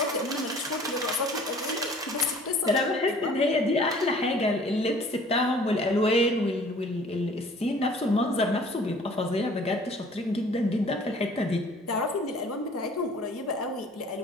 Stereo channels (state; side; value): normal; both; correlation 0.51